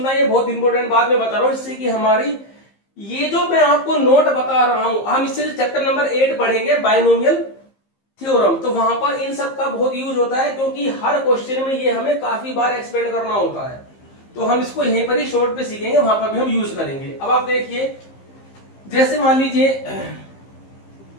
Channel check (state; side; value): late; right; 15 ms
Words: ये बहुत इंपॉर्टेंट बात मैं बता रहा हूं, इससे कि हमारी ये जो मैं आपको नोट बता रहा हूं, हम इससे चैप्टर नंबर 8 पढ़ेंगे बाइनोमियल थ्योरम, तो वहां पर इन सब का बहुत यूज होता है, क्योंकि हर क्वेश्चन में ये हमें काफी बार एक्सपेंड करना होता है। तो हम इसको यहीं पर ही शॉर्ट पे सीखेंगे, वहां पर भी हम यूज करेंगे। अब आप देखिए, जैसे मान लीजिए